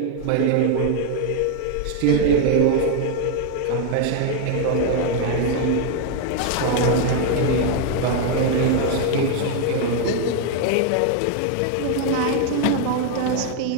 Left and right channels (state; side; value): different; both; correlation 0.01